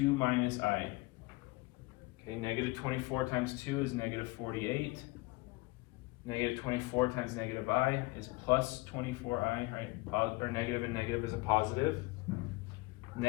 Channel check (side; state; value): right; quieter; 23.1 dB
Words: minus I. Okay, negative 24 times 2 is negative 48. Negative 24 times negative I is plus 24i, right? Or negative and negative is a positive.